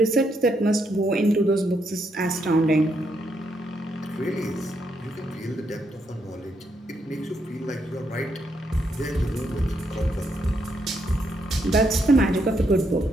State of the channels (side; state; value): both; normal; correlation 0.77